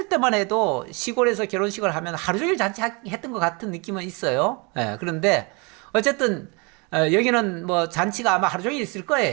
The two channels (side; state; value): left; quieter; 30.1 dB